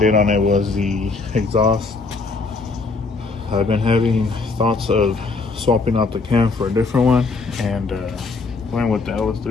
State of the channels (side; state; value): right; quieter; 4.0 dB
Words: on it was the exhaust. I've been having thoughts of swapping out the cam for a different one and going with the